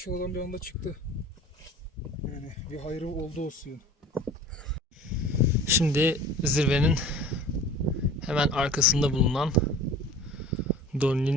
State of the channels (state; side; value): normal; both; correlation 0.42